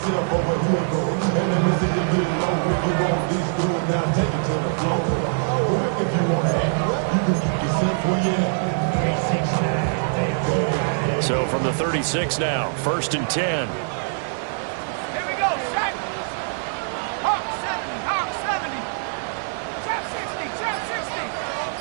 over here, go. And let me see you get low. If you want this good, now take it to the floor. If you want to act, you can keep yourself where you at. So from the 36 now, 1st and 10. Here we go, set. Hawk 70, Hawk 70. Trap 60, trap 60.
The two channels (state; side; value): silent; left; 63 dB below the other